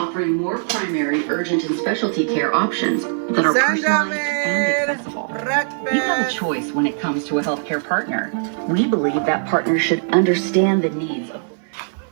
more primary, urgent, and specialty care options that are personalized and accessible. You have a choice when it comes to a healthcare partner. We believe that partner should understand the needs of.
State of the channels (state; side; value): silent; left; 65 dB below the other